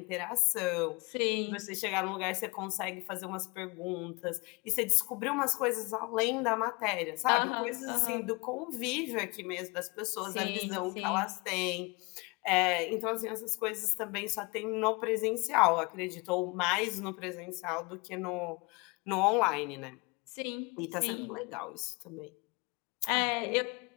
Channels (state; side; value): quieter; right; 27.4 dB